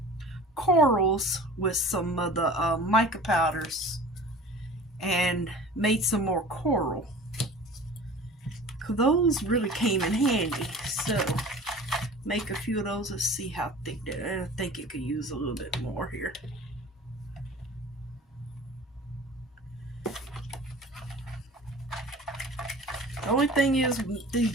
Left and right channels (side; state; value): both; normal; correlation 0.41